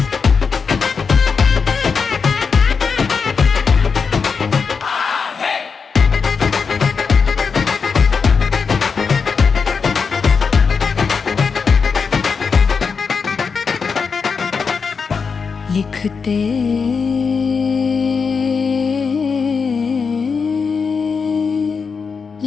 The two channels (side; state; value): right; quieter; 5.5 dB